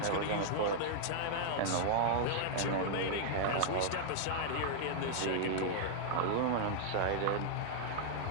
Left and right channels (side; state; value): both; different; correlation -0.01